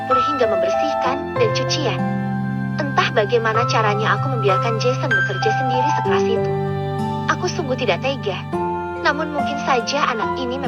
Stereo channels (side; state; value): both; identical; correlation 1.00